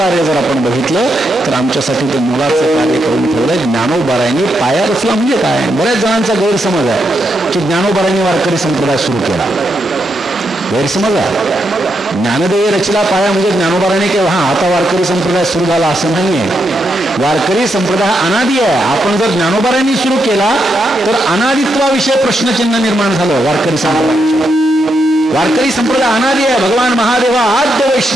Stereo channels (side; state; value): both; normal; correlation 0.81